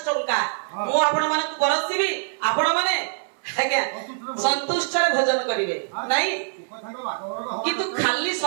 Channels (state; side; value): silent; left; digital silence